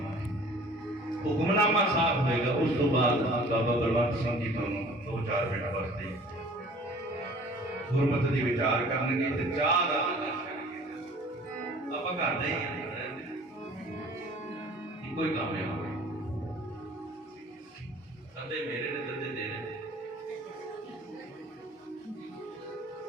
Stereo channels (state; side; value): normal; both; correlation 0.49